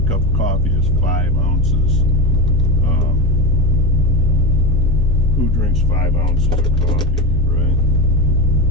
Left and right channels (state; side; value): normal; both; correlation 0.19